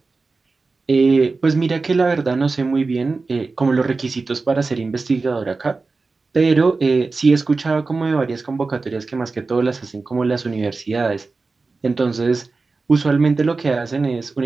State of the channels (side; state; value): left; quieter; 3.9 dB